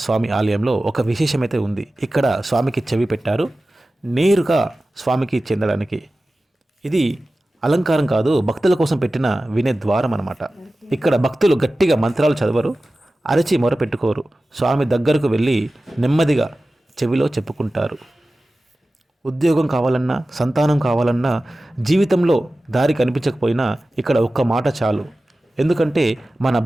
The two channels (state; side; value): normal; both; correlation 0.96